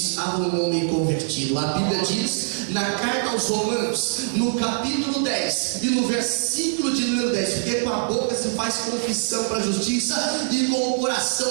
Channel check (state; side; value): silent; left; digital silence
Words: um homem convertido. A Bíblia diz na carta aos Romanos, no capítulo 10 e no versículo de número 10, porque com a boca se faz confissão para a justiça e com o